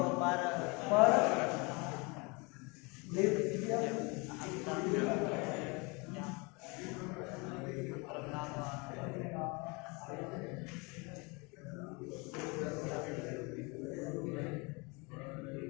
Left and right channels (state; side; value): quieter; right; 28.8 dB